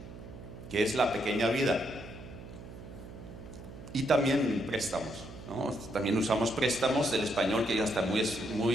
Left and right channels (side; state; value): right; noise; hum, 14 dB below the sound